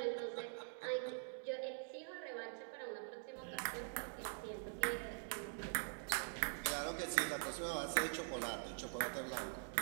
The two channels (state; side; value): silent; left; digital silence